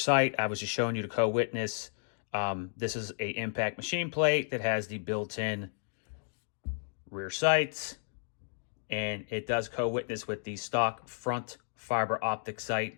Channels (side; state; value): right; silent; digital silence